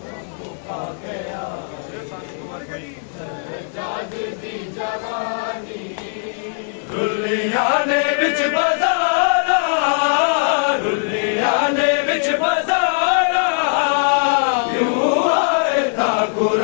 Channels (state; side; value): silent; right; digital silence